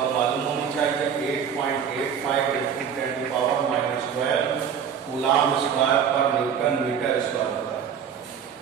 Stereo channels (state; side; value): quieter; left; 7.8 dB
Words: मालूम होनी चाहिए 8.85 into 10 to power -12 coulomb square पर न्यूटन मीटर स्क्वायर होता है।